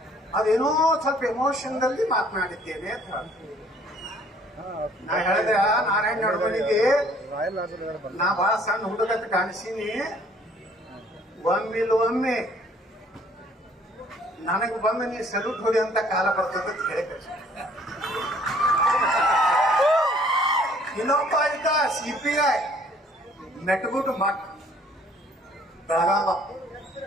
ಅದೇನೋ ಸ್ವಲ್ಪ ಎಮೋಷನ್ದಲ್ಲಿ ಮಾತನಾಡಿದ್ದೇನೆ ಅಂತ. ನಾ ಹೇಳಿದೆ, ನಾರಾಯಣ ನಡುಮನಿಗೆ ನಾ ಬಹಳ ಸಣ್ಣ ಹುಡುಗಂತ ಕಾಣಿಸೀನಿ, ಒಮ್ಮೆ ನನಗೆ ಬಂದು ನೀ ಸಲ್ಯೂಟ್ ಹೊಡಿ ಅಂತ ಕಾಲ ಬರ್ತದ ಅಂತ ಹೇಳಿ ಕಳಿಸಿ. ಇನ್ನೊಬ್ಬ ಇದ್ದ CPI ಮೆಟ್ಗುಟ್ಟು ಮಠ್ ಬೆಳಗಾವ,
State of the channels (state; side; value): normal; both; correlation 0.59